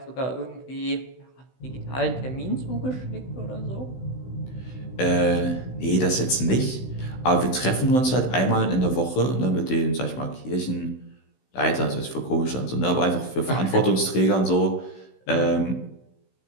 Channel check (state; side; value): late; right; 16 ms